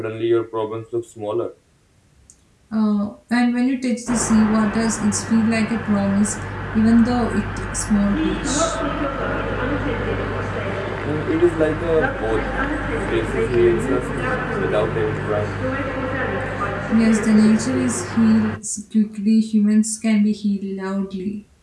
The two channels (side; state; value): both; identical; correlation 1.00